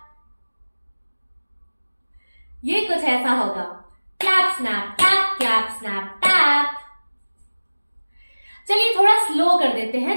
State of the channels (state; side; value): inverted; both; correlation -1.00